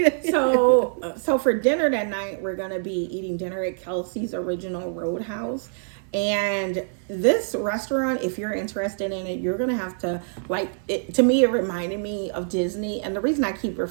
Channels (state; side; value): silent; left; 55 dB below the other